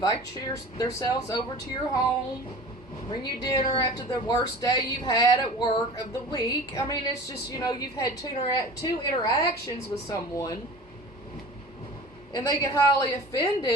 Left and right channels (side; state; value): both; normal; correlation 0.39